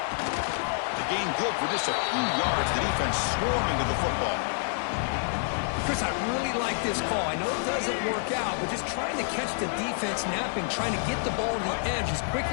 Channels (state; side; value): silent; right; 59 dB below the other